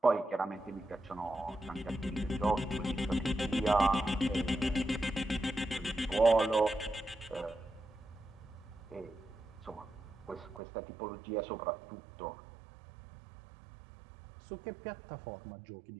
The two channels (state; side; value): drops out; left; at 10.6 s